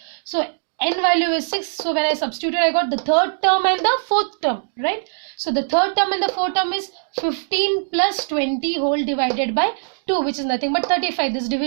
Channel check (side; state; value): left; silent; digital silence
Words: So n value is 6. So when I substitute, I got the third term and the fourth term, right? So the third term and the fourth term is 15 plus 20 whole divided by 2, which is nothing but 35. This